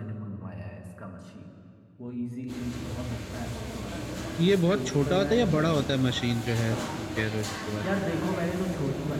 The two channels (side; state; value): both; identical; correlation 1.00